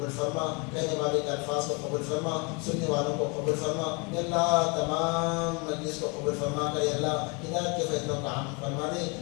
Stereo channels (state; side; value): quieter; right; 31.1 dB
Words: فرما کہنے والے کے الفاظ کو قبول فرما سننے والوں کو قبول فرما یا اللہ تمام مجلس کو قبول فرما کر یا اللہ ہدایت کے فیصلوں کا عام فرما دے